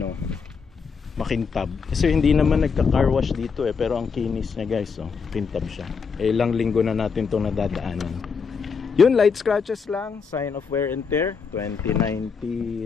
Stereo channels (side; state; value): right; quieter; 5.6 dB